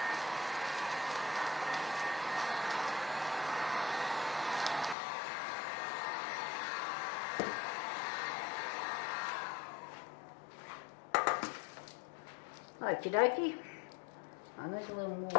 Okie dokie. I need a little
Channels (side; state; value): right; drops out; at 5.0 s